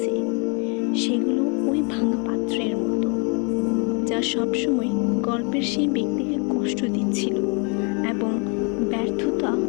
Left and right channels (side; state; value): right; quieter; 35.0 dB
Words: সেগুলো ওই ভাঙা পাত্রের মতো, যা সবসময় গল্পের সেই ব্যক্তিকে কষ্ট দিচ্ছিল এবং ব্যর্থতা